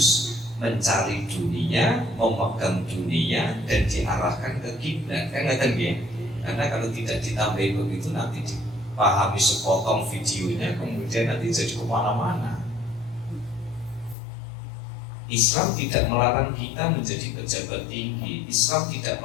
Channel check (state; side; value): drops out; right; at 14.2 s